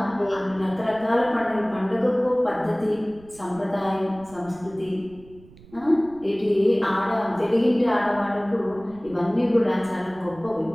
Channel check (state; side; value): noise; right; rumble, 23 dB below the sound